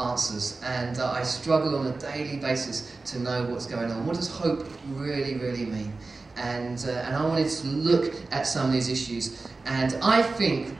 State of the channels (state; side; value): quieter; left; 3.7 dB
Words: and I struggle on a daily basis to know what's going on. What does hope really, really mean? And I wanted to look at some of these issues, and I think